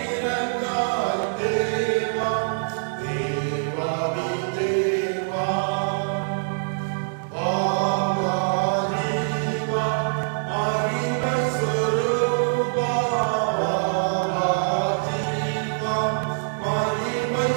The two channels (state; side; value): silent; left; digital silence